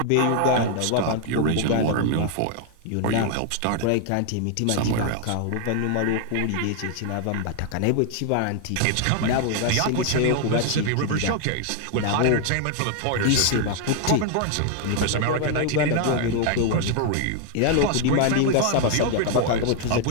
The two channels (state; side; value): different; both; correlation 0.00